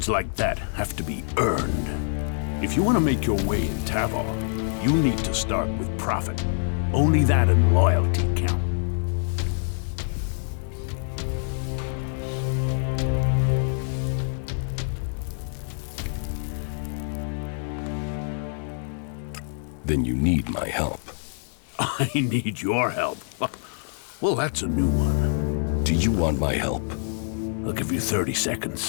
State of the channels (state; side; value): silent; right; digital silence